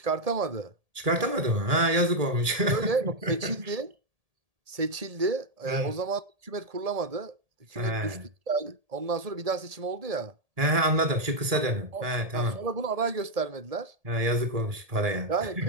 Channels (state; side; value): late; left; 1.7 ms